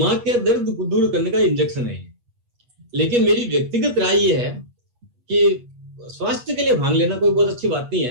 के दर्द दूर करने का इंजेक्शन है। लेकिन मेरी व्यक्तिगत राय ये है कि स्वास्थ्य के लिए भांग लेना कोई बहुत अच्छी बात नहीं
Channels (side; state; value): left; late; 8.3 ms